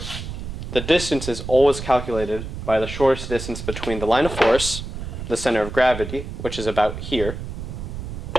the distance is always calculated by the shortest distance between the line of force, the center of gravity, which is about here,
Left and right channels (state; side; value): noise; right; rumble, 7 dB below the sound